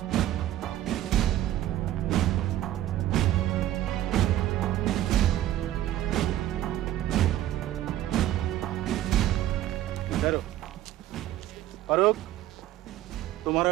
ठहरो फारूक तुम्हारा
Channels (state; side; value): quieter; left; 13.4 dB